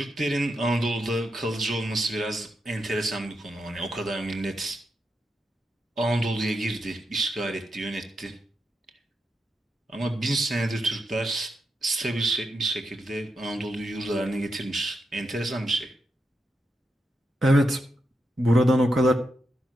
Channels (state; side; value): normal; both; correlation 0.84